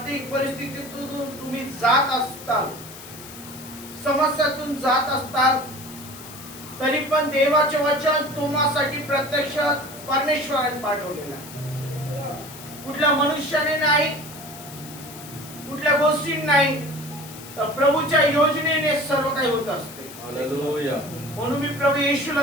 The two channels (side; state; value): left; noise; hiss, 15 dB below the sound